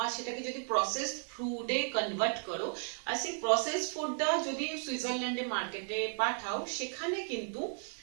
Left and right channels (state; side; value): silent; left; 55 dB below the other